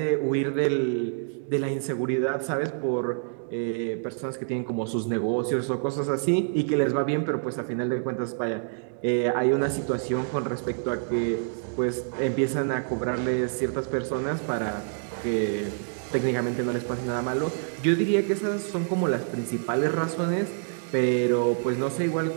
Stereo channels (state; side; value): silent; left; digital silence